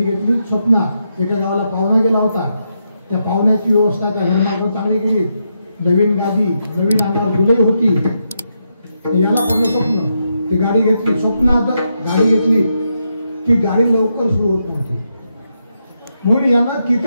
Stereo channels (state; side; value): inverted; both; correlation -0.83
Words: घेतली? स्वप्नात एका गावाला पाहुणा गेला होता. त्या पाहुण्याची व्यवस्था त्या घरमालकानं चांगली केली. नवीन गादी, नवीन अंगावर दुलई होती. याला पडलं स्वप्न. ती गाडी घेतली. स्वप्नात गाडी घेतली. ती गाडी लवकर सुरू होत नव्हती. म्हणून यानं